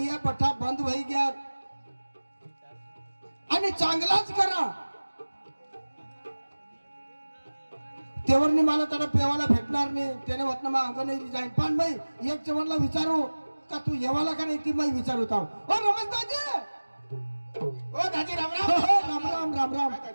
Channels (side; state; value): both; inverted; correlation -1.00